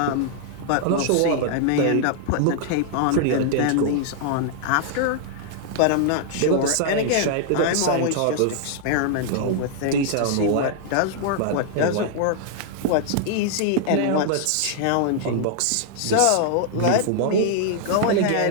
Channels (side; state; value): both; different; correlation -0.01